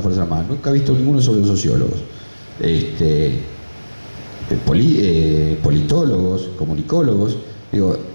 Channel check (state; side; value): inverted; both; correlation -1.00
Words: Fuerzas Armadas. Nunca he visto ninguno sobre los sociólogos. Politólogos, comunicólogos. Digo,